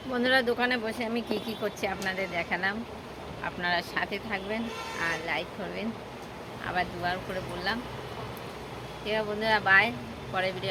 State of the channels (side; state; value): both; identical; correlation 1.00